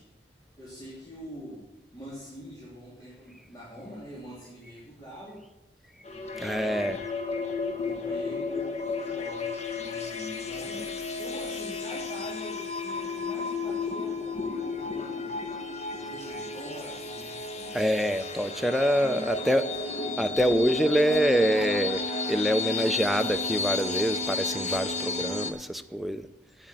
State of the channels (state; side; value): normal; both; correlation 0.69